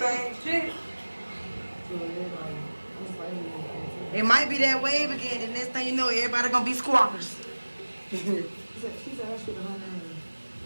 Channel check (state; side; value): inverted; both; correlation -1.00